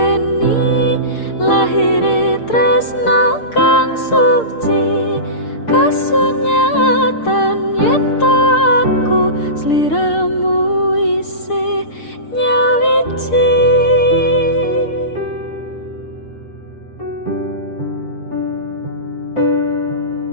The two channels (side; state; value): right; late; 6.6 ms